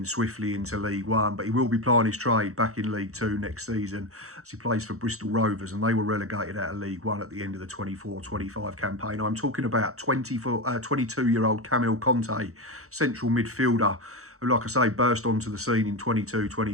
swiftly into League One. But he will be plying his trade back in League Two next season as he plays for Bristol Rovers, and they were relegated out of League One at the end of the 24-25 campaign. I'm talking about 22-year-old Camille Conte, central midfielder, who, like I say, burst onto the scene in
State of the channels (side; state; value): left; late; 0.64 ms